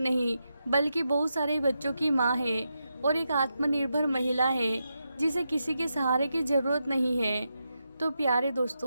बल्कि बहुत सारे बच्चों की माँ है और एक आत्मनिर्भर महिला है जिसे किसी के सहारे की ज़रूरत नहीं है। तो प्यारे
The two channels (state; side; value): inverted; both; correlation -0.86